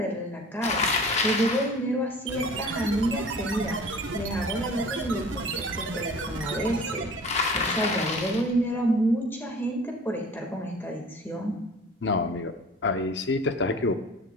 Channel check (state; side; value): normal; both; correlation 0.44